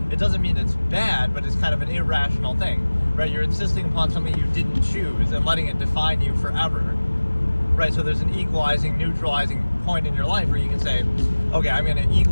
it doesn't mean it's bad, but it's kind of an irrational thing, right? You're insisting upon something you didn't choose and letting it define you forever, right? So there's an equalizing, neutralizing point in your life where you can say, okay, I'm going to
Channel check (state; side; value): inverted; both; correlation -1.00